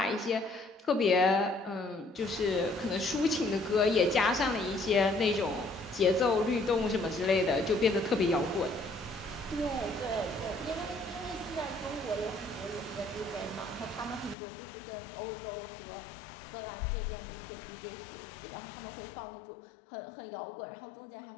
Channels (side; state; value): right; drops out; at 14.4 s